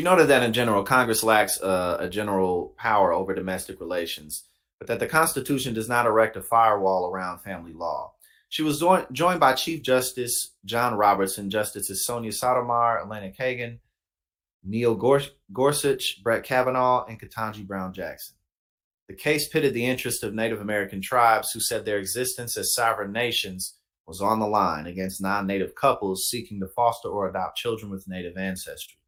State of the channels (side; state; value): both; identical; correlation 1.00